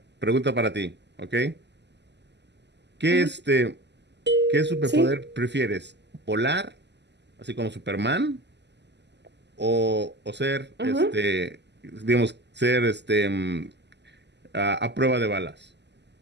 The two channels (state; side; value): late; left; 0.50 ms